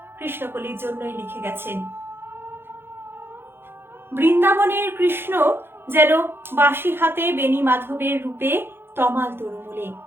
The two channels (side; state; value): left; late; 0.11 ms